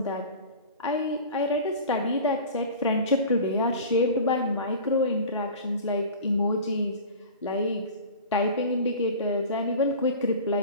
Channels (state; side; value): inverted; both; correlation -0.37